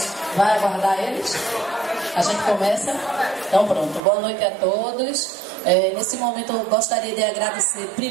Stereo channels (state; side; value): drops out; left; at 4.0 s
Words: vai aguardar eles? A gente começa? Então pronto. Boa noite a todos. Nesse momento eu gostaria de agradecer